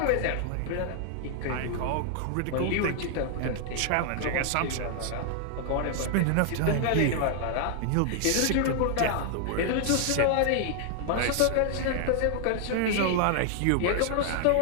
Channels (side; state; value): both; different; correlation 0.00